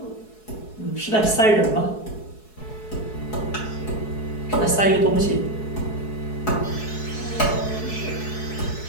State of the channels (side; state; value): right; late; 4.7 ms